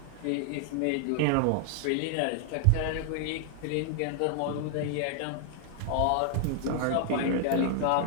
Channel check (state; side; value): different; both; correlation 0.00